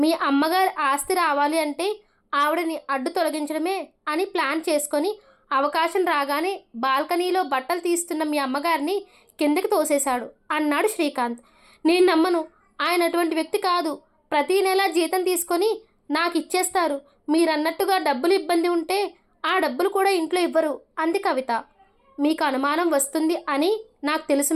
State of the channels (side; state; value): both; identical; correlation 1.00